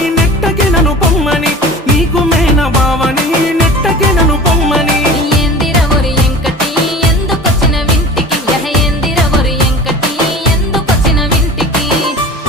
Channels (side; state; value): both; normal; correlation 0.38